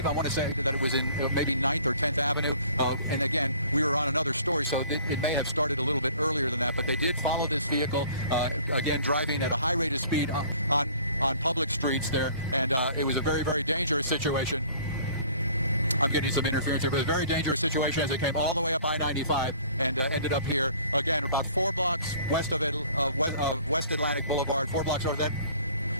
I want to say that it was in maybe 9th or 10th Avenue. And again, we were on another story, so it may have started a little bit earlier than that, but they did follow this vehicle, again, driving at a high rate of speed on public streets there, and it was a very, very dangerous situation. I'm getting some interference here, but a very dangerous situation as it came all the way up I-95 and ended up here, again, about 4 blocks west of West Atlantic Boulevard, 4 blocks over that.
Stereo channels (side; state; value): both; inverted; correlation -0.52